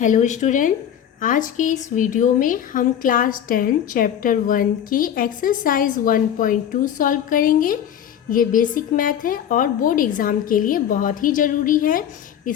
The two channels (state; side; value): quieter; right; 9.6 dB